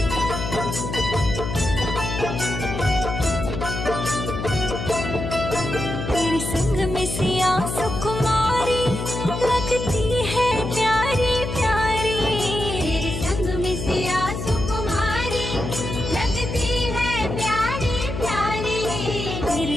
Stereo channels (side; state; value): left; noise; hum, 5 dB below the sound